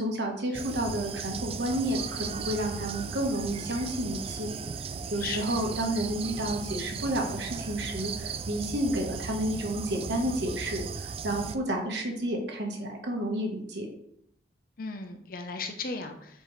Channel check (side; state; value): both; normal; correlation 0.45